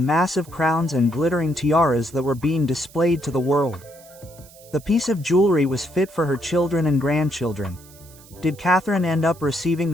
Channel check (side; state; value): right; noise; hiss, 23 dB below the sound